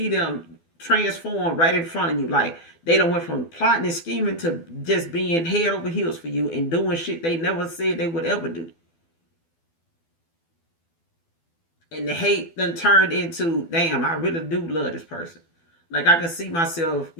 them transform right in front of you. Like, they done went from plotting and scheming to just being head over heels for you and doing shit they never said they would ever do. And the hate then turned into, damn, I really do love this person. Like I can see myself,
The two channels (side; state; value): right; late; 12 ms